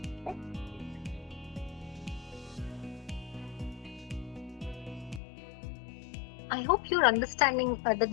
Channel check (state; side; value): drops out; right; at 5.2 s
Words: I hope you're understanding the